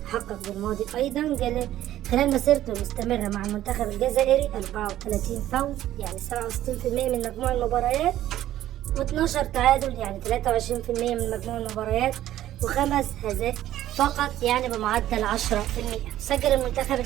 حقق بالماضي أيضا خلال مسيرته المستمرة مع المنتخب الجزائري 34 فوز يعني 67% من مجموع المباريات، و12 تعادل يعني 23% من مجموع المباريات، و5 هزائم فقط يعني بمعدل 10%. سجل المنتخب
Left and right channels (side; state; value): left; quieter; 13.2 dB